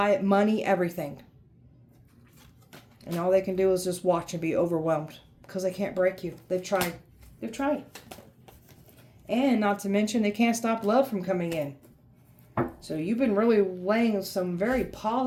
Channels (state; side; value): identical; both; correlation 1.00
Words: it, money, everything. And all they can do is just watch and be overwhelmed because they can't break you. They've tried. They've tried. And not to mention, they can't stop love from coming in. So you've been really laying some very